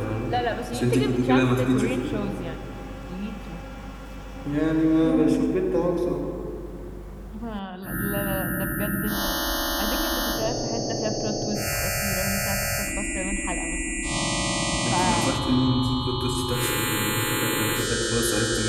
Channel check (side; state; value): both; identical; correlation 1.00